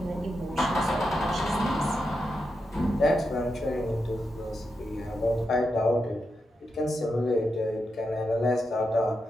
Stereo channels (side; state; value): both; normal; correlation 0.86